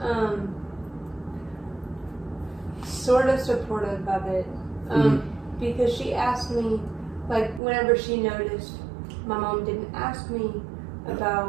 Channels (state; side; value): drops out; left; at 7.6 s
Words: sort of supportive of it, because she asked me, like, whenever she noticed my mom didn't ask me